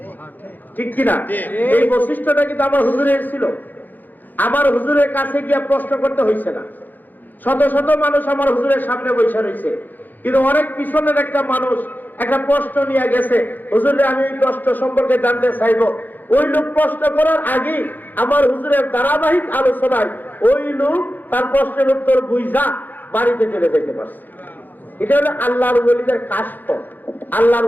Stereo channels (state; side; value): late; right; 0.086 ms